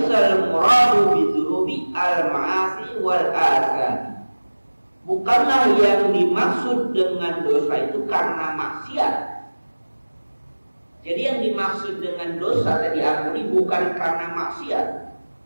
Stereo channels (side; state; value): both; inverted; correlation -1.00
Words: muradu bidzunubi al-ma'asi wal asami. Bukanlah yang dimaksud dengan dosa itu karena maksiat. Jadi yang dimaksud dengan dosa tadi diampuni bukan karena maksiat.